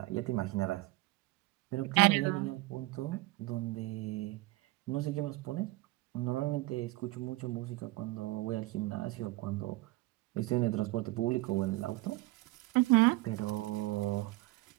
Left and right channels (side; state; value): left; quieter; 20.2 dB